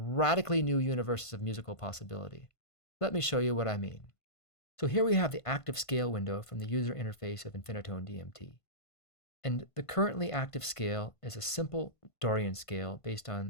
new universes of musical possibility. Let me show you what I mean. So here we have the active scale window from the user interface of Infinitone DMT. And the currently active scale is a simple Dorian scale based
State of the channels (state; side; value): late; right; 1.5 ms